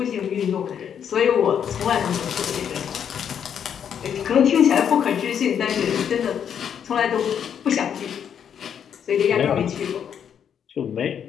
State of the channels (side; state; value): right; quieter; 8.3 dB